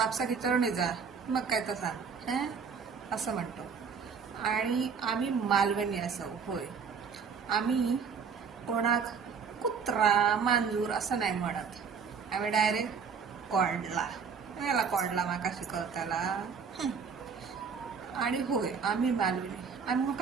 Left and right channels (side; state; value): left; quieter; 6.1 dB